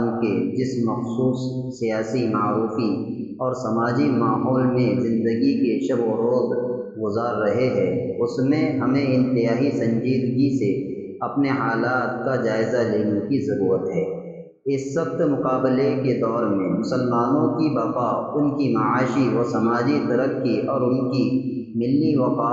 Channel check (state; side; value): identical; both; correlation 1.00